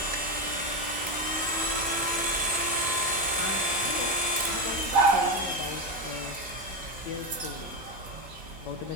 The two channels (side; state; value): both; normal; correlation 0.14